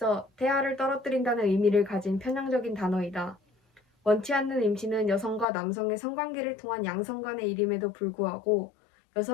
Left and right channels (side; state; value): right; drops out; at 5.5 s